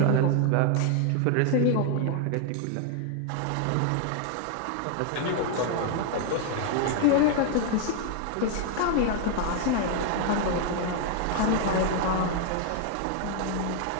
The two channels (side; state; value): both; different; correlation 0.00